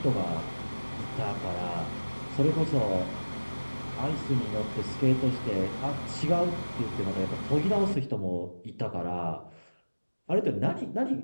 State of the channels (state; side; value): inverted; both; correlation -1.00